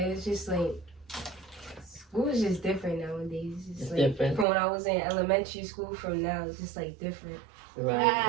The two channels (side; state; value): left; drops out; at 4.5 s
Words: it's just school is just different nowadays. It's different. From when I was in elementary school from now, it's just different.